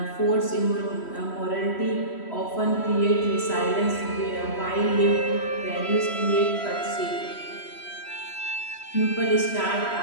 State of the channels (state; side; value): late; right; 3.1 ms